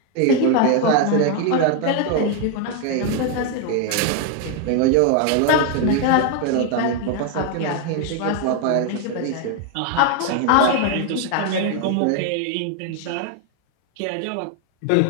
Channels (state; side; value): different; both; correlation 0.01